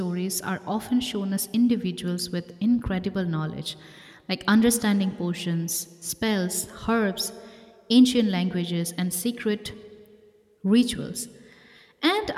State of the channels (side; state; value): both; identical; correlation 1.00